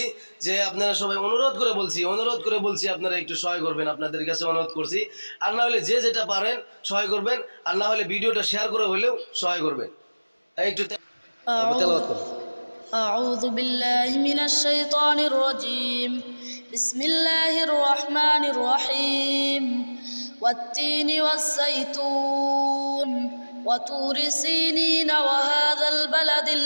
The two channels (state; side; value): inverted; both; correlation -1.00